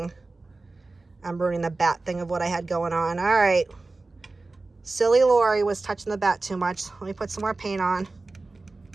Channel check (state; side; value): quieter; left; 3.4 dB